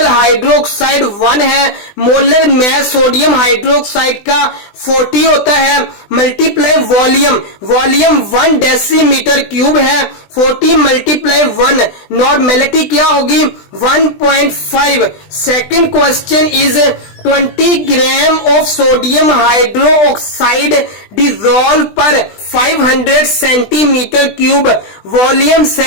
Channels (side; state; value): right; late; 20 ms